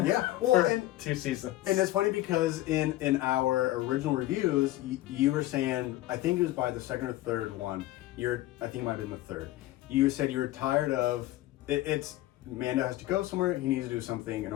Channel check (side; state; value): right; quieter; 16.3 dB